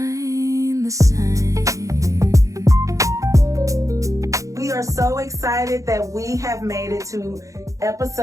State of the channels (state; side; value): late; left; 0.16 ms